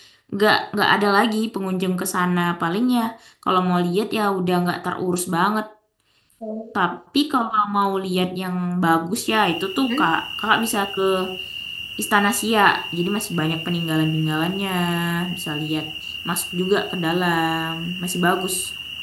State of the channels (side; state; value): both; identical; correlation 1.00